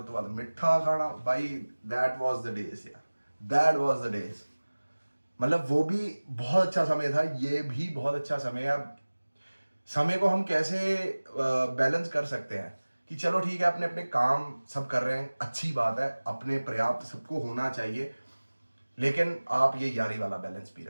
बाद मिठा खाना। भाई दैट वाज द डेज यार, दैट वाज द डेज। मतलब वो भी बहुत अच्छा समय था, ये भी बहुत अच्छा समय है। समय को हम कैसे बैलेंस कर सकते हैं कि चलो ठीक है, अपने अपने काम सब कर रहे हैं, अच्छी बात है, अपने पर्याप्त सबको होना चाहिए, लेकिन आप ये यारी वाला बैलेंस भी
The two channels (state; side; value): inverted; both; correlation -1.00